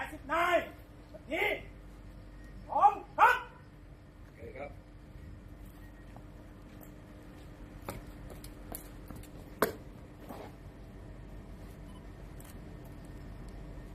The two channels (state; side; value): identical; both; correlation 1.00